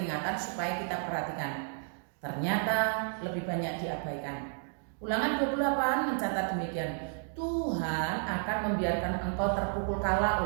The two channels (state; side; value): silent; left; 56 dB below the other